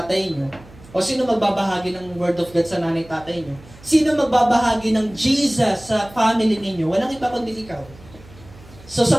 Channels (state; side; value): noise; right; hum, 21 dB below the sound